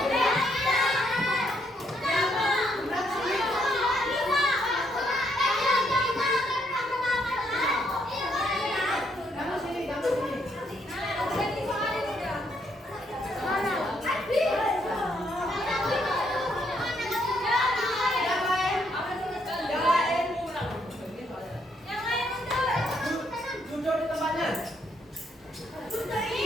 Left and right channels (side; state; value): both; normal; correlation 0.73